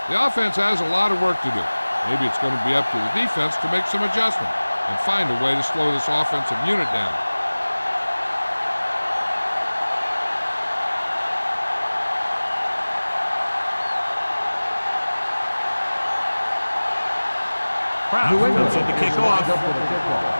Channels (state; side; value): inverted; both; correlation -1.00